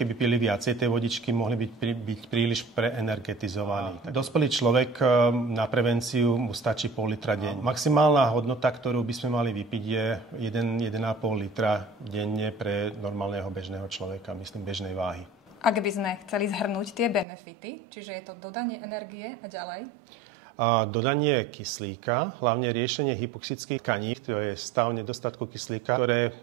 pili viacej tej vodičky, mohli byť príliš preenergetizovaní. Dospelý človek na prevenciu mu stačí pol litra denne. Maximálna hodnota, ktorú by sme mali vypiť, je 1,5 litra denne pre normálneho bežného človeka, myslím bežnej váhy. Ak by sme chceli zhrnúť tie benefity, čiže je to dodanie energie a ďalej? Dodanie kyslíka, hlavne riešenie hypoxických tkaní, to je stav nedostatku kyslíka, ktoré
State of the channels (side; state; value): left; drops out; at 17.2 s